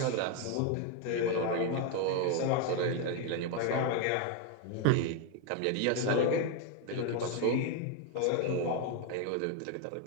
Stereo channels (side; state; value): both; different; correlation 0.01